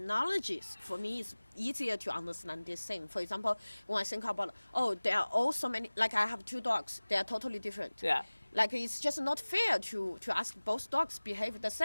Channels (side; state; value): both; inverted; correlation -1.00